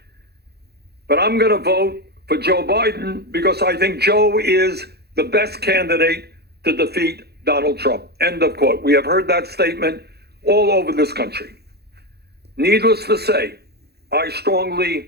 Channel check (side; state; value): left; late; 0.47 ms